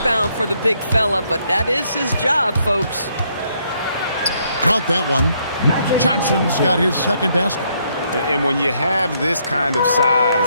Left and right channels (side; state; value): both; inverted; correlation -0.72